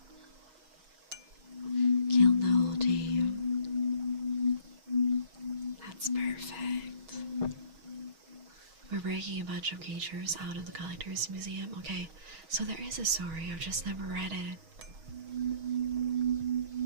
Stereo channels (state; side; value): late; left; 6.3 ms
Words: Kill the whole team. That's perfect. We're breaking a bunch of creatures out of the Collector's Museum. Okay, so there is a story, I've just never read it.